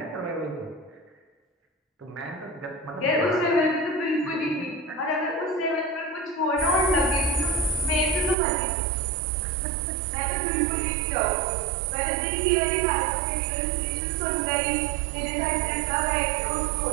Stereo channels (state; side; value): drops out; left; at 8.3 s